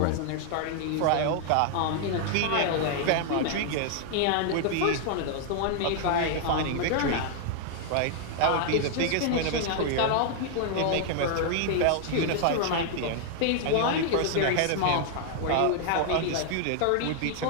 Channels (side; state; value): both; different; correlation 0.00